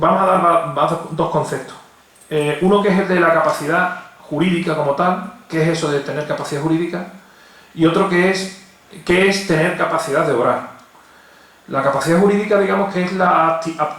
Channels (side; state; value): both; identical; correlation 1.00